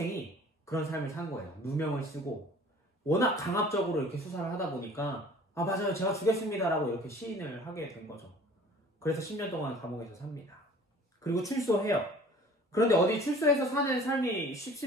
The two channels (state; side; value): normal; both; correlation 0.49